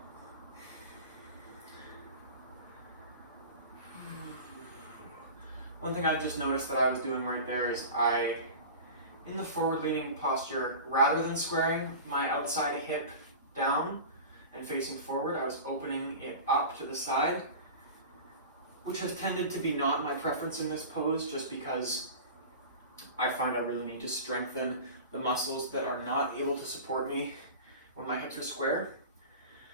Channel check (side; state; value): both; inverted; correlation -0.34